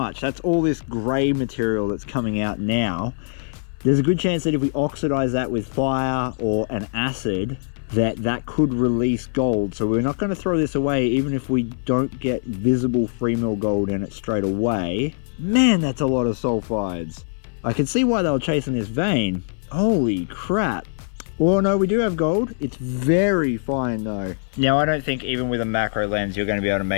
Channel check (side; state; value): right; silent; 58 dB below the other